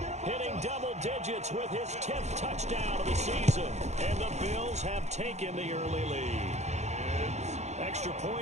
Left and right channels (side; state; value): left; late; 0.33 ms